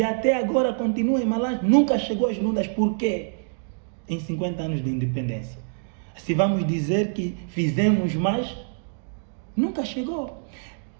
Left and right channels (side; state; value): left; silent; digital silence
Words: até agora continua em Malange, nunca chegou às Lundas. Por quê? Em 50 anos de independência. Se vamos dizer que fizemos mais, nunca chegou.